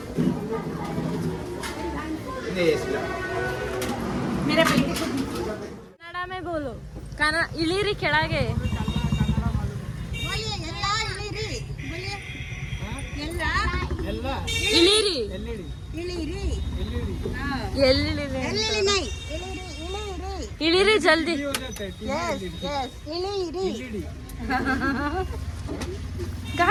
ಕನ್ನಡ में बोलो. ಕನ್ನಡ ಇಳಿರಿ ಕೆಳಗೆ. ಇಳಿರಿ. ಇಳಿರಿ ಜಲ್ದಿ.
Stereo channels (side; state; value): both; identical; correlation 1.00